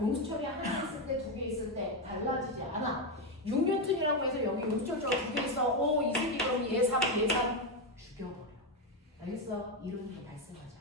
하나 있을 때 2개 있을 때 달라지지 않아. 6뉴턴이라고 해서 여기 용수철 저울 2개 있어. 오, 이 새끼 그럼 얘 3 죽여버려. 알겠어? 이름도 발생하지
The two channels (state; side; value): normal; both; correlation 0.08